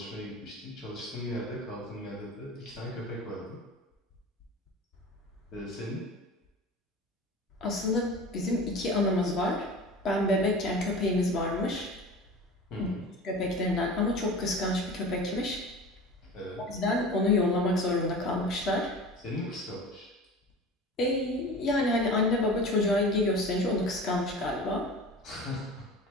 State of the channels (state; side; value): normal; both; correlation 0.36